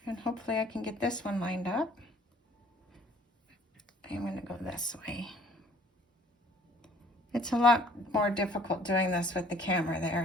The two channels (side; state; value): both; normal; correlation 0.55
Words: And hopefully I can get this one lined up. I'm going to go this way. It's a lot more difficult doing this with the camera